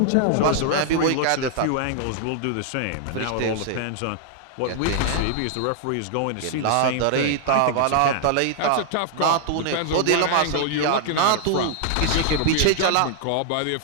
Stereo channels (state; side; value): different; both; correlation 0.00